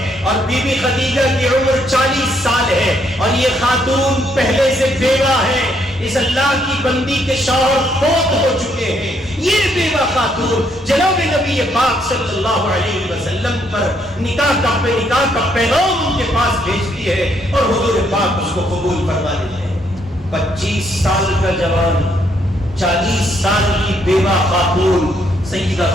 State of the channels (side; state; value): both; normal; correlation 0.72